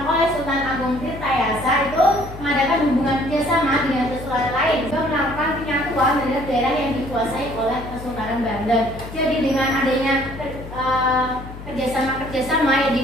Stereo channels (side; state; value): left; noise; hum, 13 dB below the sound